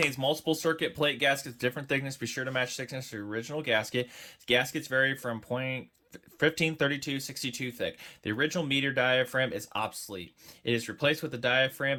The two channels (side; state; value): both; identical; correlation 1.00